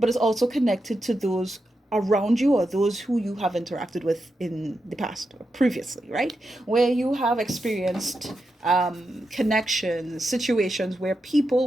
it's also connected to those around you or those who you have interacted with in the past or previously, right? Where you have experienced connections, situations where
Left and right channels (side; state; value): both; normal; correlation 0.87